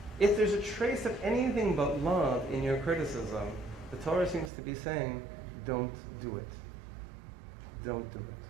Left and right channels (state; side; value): drops out; left; at 4.5 s